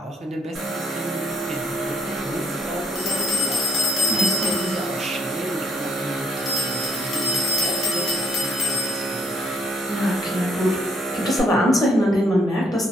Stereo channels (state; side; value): normal; both; correlation 0.68